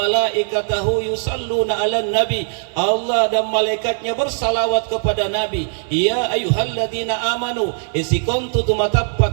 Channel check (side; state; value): left; silent; digital silence